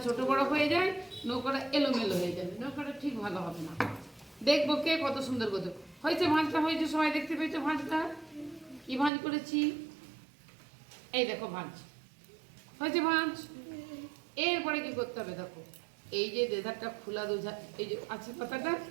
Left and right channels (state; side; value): drops out; left; at 9.1 s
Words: ছোট বড় হয়ে যায় নৌকাটা এলোমেলো হয়ে যাবে, নৌকাটা ঠিক ভালো হবে না। দেখবো কে কত সুন্দর করতে হয়েছে। ভাঁজটা হয়েছে, সবাই দেখতে পেয়েছো ভাঁজটা? কি ভাঁজ করেছি? এই দেখো ভাঁজ হয়েছে, ভাঁজ। এরপরে কি করতে হবে দেখো, এই যে দেধারটা খোলা দুধার এই যে আছে পাতাটা,